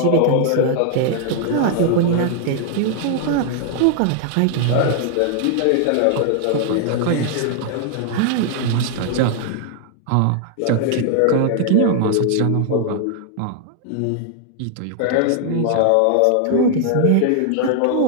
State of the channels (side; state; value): both; different; correlation 0.00